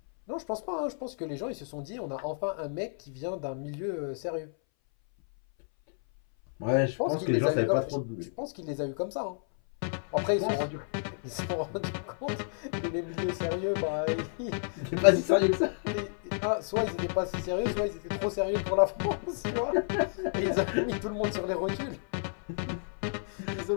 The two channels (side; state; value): right; silent; 57 dB below the other